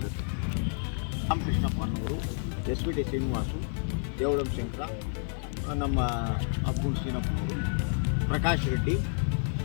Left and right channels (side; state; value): right; silent; 58 dB below the other